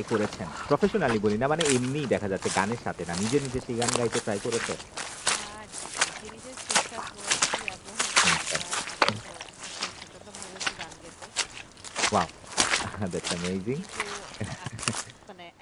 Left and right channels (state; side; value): identical; both; correlation 1.00